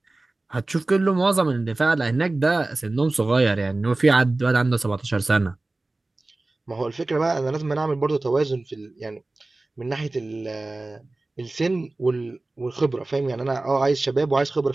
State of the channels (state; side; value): quieter; left; 3.0 dB